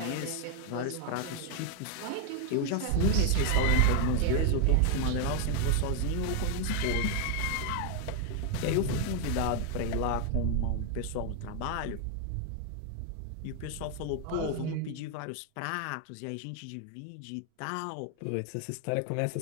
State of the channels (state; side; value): different; both; correlation 0.01